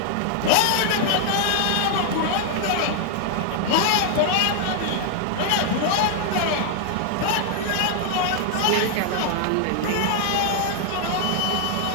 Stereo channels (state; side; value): different; both; correlation 0.00